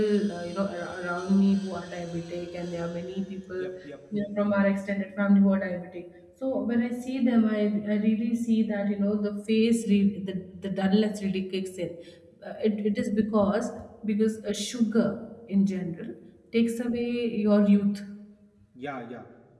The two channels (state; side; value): identical; both; correlation 1.00